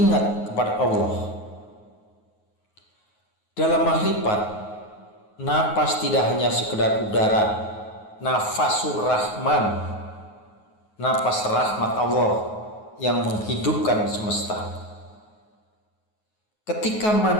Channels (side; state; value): right; late; 9.4 ms